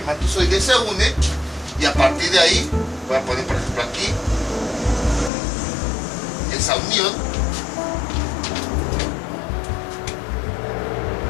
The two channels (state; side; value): drops out; right; at 5.3 s